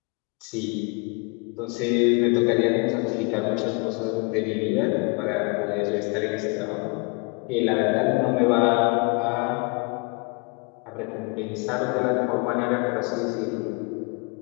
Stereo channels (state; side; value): quieter; right; 32.0 dB